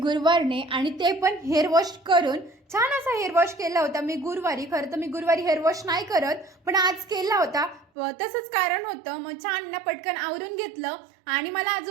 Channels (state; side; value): drops out; left; at 7.9 s